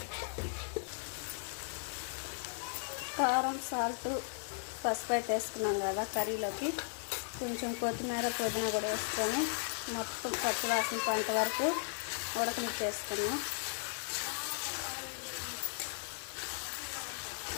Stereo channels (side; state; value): right; silent; digital silence